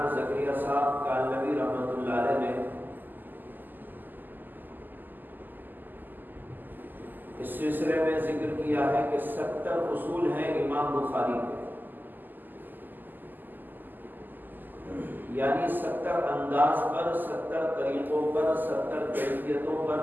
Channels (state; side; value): late; left; 0.088 ms